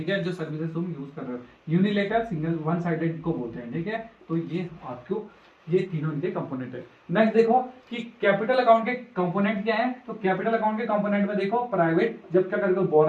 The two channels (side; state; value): both; identical; correlation 1.00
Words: है, जो सर्विसेज तुम यूज कर रहे हो, यूनिलेटरल सिंगल वन साइडेड को बोलते हैं। ठीक है, तो ये आपको ये तीनों इनके कंपोनेंट है। नेक्स्ट देखो कि कैपिटल अकाउंट के कंपोनेंट क्या है। तो कैपिटल अकाउंट के कंपोनेंट में देखो, प्राइवेट जब क्या करोगे,